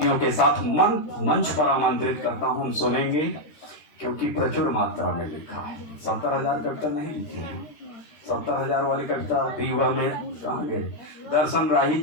के साथ मंच पर आमंत्रित करता हूं। हम सुनेंगे क्योंकि प्रचुर मात्रा में लिखा है। 70,000 कविता नहीं लिखी है, 70,000 वाली कविता दीवा में कहाँ गए? दर्शन राही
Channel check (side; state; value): right; late; 13 ms